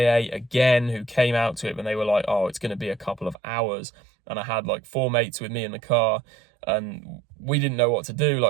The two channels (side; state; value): left; drops out; at 3.4 s